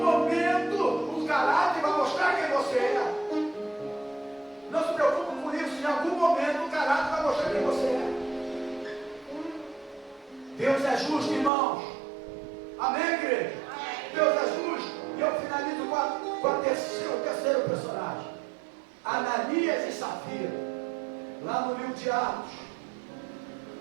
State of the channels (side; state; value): left; drops out; at 11.5 s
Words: momento, o caráter vai mostrar quem você é. Não se preocupe com isso, em algum momento o caráter vai mostrar quem você é. Deus é justo, irmãos. Amém, igreja? Deus é justo. E eu finalizo com o terceiro personagem. de Atos.